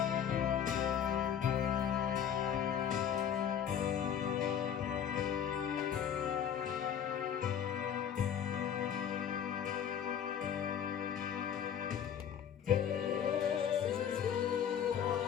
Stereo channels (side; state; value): right; quieter; 8.8 dB